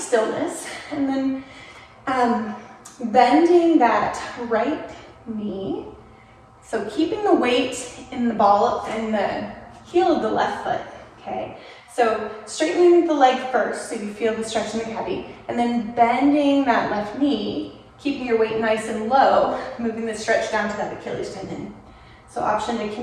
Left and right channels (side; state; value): both; identical; correlation 1.00